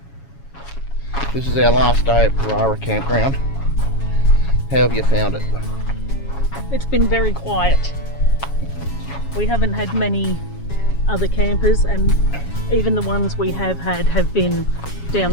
This is our last day at Parara campground. How have you found it? It's been very quiet. We haven't had many other campers, and even the ones we have had have been down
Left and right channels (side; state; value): right; late; 7.2 ms